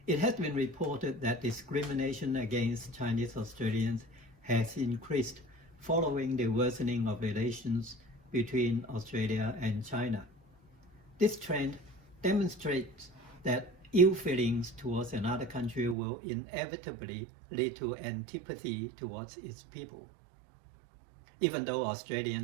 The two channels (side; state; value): left; drops out; at 16.0 s